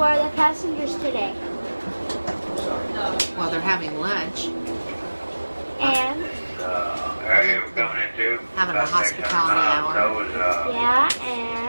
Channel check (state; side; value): inverted; both; correlation -1.00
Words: the passengers today? Well, they're having lunch, And area we're going into. having a hospitality hour, yeah,